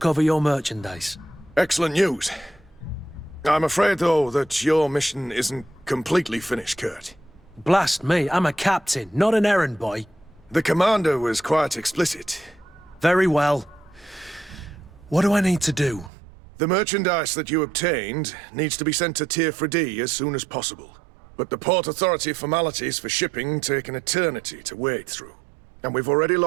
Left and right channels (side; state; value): left; drops out; at 16.1 s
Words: your merchandise. Excellent news. I'm afraid, though, that your mission isn't completely finished, Kurt. Blast me, I'm a captain, not an errand boy. The commander was quite explicit. Very well. What do I need to do? The merchandise that you obtained needs to be sent to Tier 4D as soon as possible. But the Port Authority formalities for shipping take an eternity to wade through. And we've already